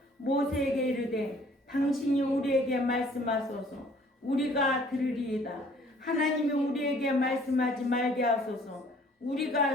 모세에게 이르되 당신이 우리에게 말씀하소서 우리가 들으리이다. 하나님이 우리에게 말씀하지 말게 하소서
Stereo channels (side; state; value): both; normal; correlation 0.57